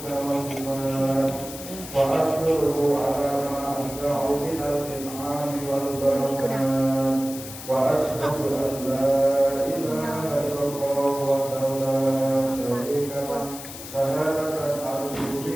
wal sifat wa ashkuruhu ala ma asda'u minal in'ami wal barakat wa ashhadu an la ilaha illallah wahdahu la syarika lah syahadatan arju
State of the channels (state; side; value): noise; left; hiss, 12 dB below the sound